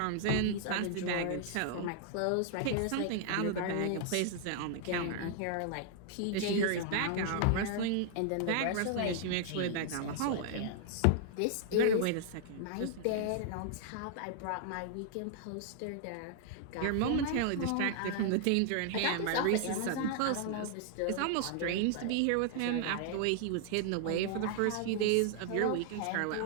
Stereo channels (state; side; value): different; both; correlation -0.01